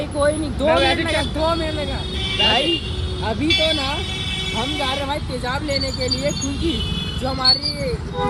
कोई नहीं, 2 मिनट लगा भाई। अभी तो ना हम जा रहे हैं भाई तेजाब लेने के लिए, क्योंकि जो हमारी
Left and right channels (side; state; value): both; identical; correlation 1.00